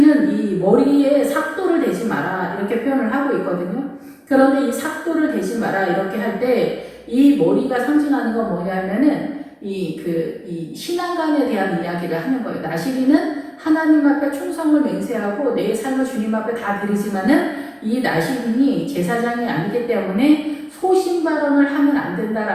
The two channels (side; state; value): both; identical; correlation 1.00